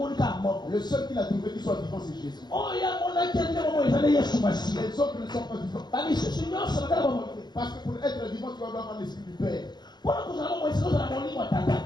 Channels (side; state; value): right; late; 0.21 ms